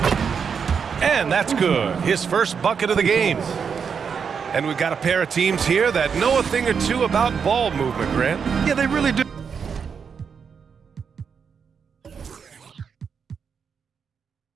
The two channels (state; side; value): quieter; left; 6.5 dB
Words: And that's good. His first bucket of the game. And we've got a pair of teams here that know a thing or two about ball movement, Grant. Yeah, they really do.